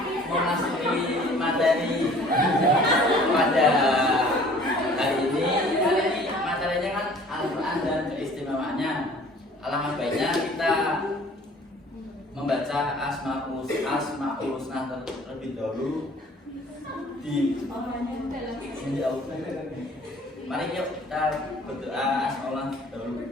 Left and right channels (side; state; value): both; normal; correlation 0.51